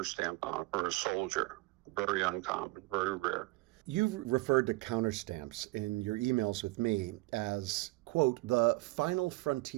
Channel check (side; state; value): left; quieter; 22.1 dB